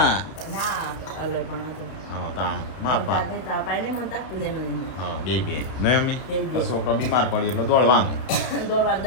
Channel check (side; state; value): right; late; 32 ms